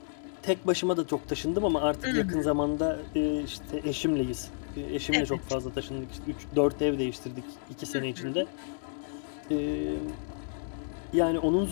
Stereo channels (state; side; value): silent; right; 57 dB below the other